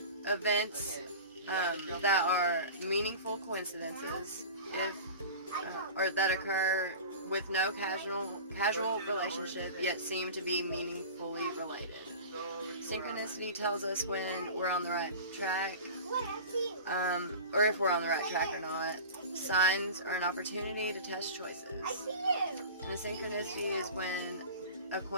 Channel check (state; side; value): inverted; both; correlation -0.35